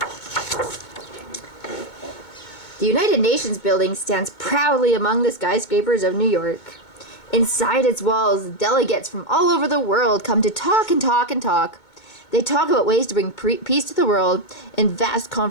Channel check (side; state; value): right; late; 2.2 ms